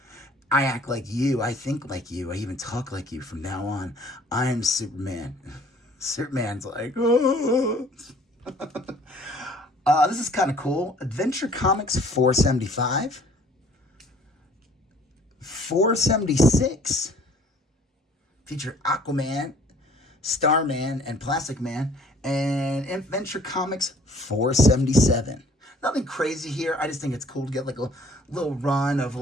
I act like you, I think like you, I even talk like you from now on. I am Superman. Superman's like, oh. This is kind of cool. Adventure Comics 475. 476. Feature Aquaman, Starman, and Plastic Man. And Adventure Comics 477. Nothing crazy here. I just think it's cool to get like a little run of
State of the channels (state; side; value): normal; both; correlation 0.54